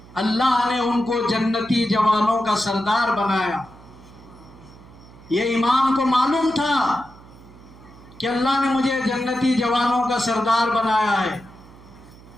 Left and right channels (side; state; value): right; noise; hum, 21 dB below the sound